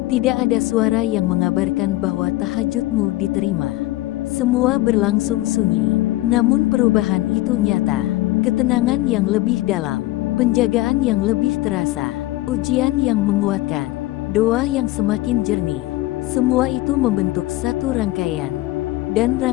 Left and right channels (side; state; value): right; quieter; 17.8 dB